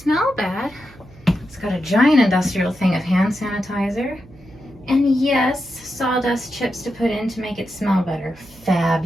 bad. It's got a giant industrial thing of hand sanitizer. And yes, sawdust chips to put in to make it smell better.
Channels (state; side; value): noise; right; hum, 24 dB below the sound